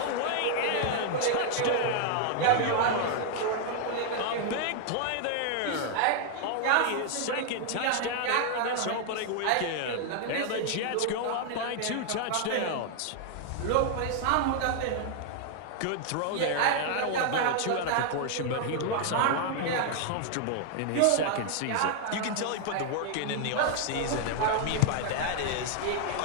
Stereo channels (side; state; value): both; different; correlation 0.00